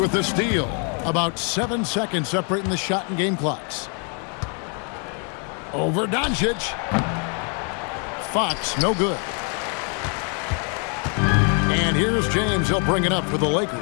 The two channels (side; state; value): right; quieter; 39.0 dB